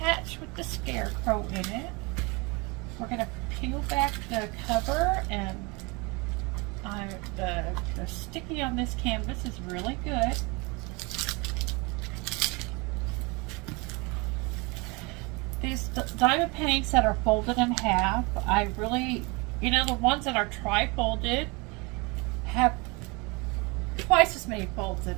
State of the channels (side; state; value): left; quieter; 27.7 dB